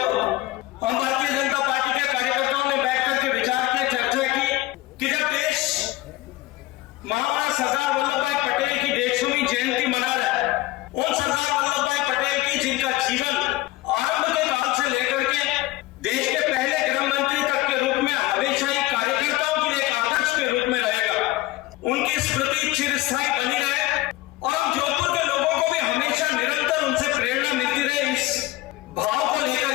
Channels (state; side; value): quieter; right; 18.2 dB